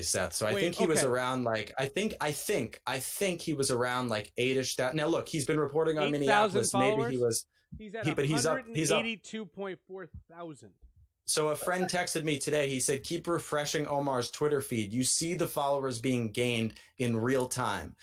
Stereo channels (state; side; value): identical; both; correlation 1.00